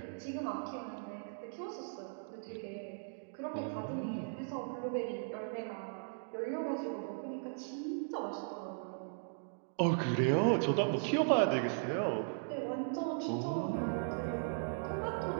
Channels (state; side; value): silent; left; digital silence